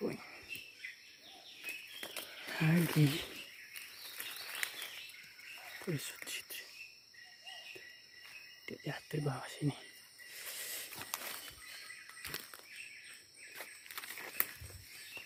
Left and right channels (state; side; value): identical; both; correlation 1.00